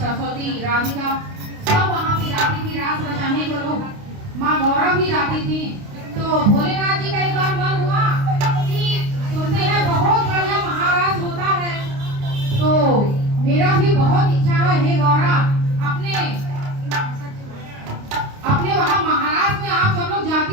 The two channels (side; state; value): left; late; 29 ms